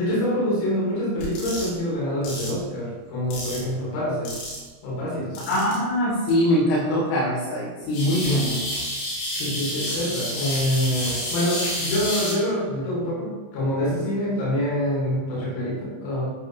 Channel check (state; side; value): late; right; 30 ms